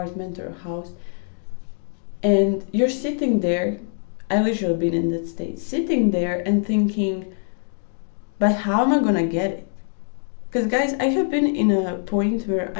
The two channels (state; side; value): silent; right; digital silence